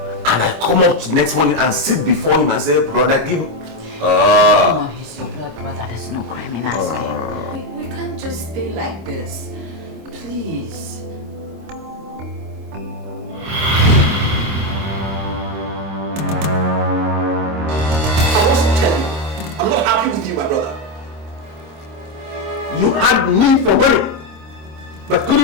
And I come up next morning and sit before him and say, brother, give me. Come on, he's your blood brother. There's no crime in asking. We can't just stay like this. Please. I'm not happy with you, my brother. You had me for money, but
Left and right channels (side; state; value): left; late; 26 ms